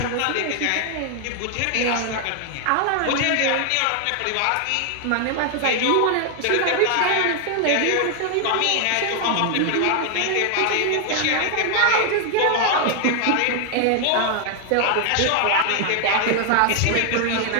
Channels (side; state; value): both; different; correlation 0.00